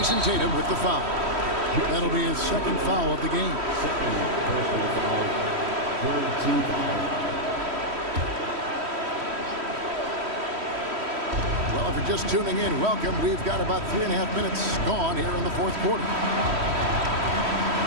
Tatum with the foul. That'll be his second foul of the game. Well, if you're just tuning in, welcome. We've got about 3.5 minutes gone here in the fourth quarter.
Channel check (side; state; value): left; late; 3.1 ms